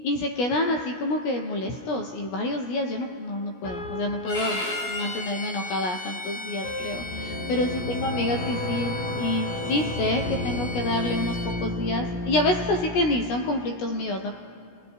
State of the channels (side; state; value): right; late; 17 ms